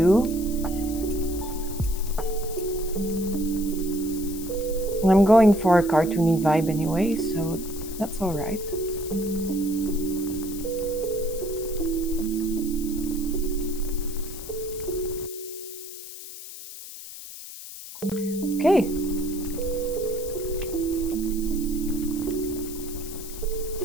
I'm going for a cartoony vibe anyway, so that's all right. Okay.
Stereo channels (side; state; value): left; noise; hiss, 12 dB below the sound